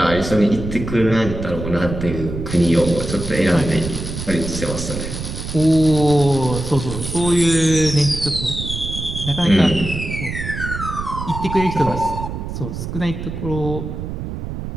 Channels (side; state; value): right; noise; rumble, 6 dB below the sound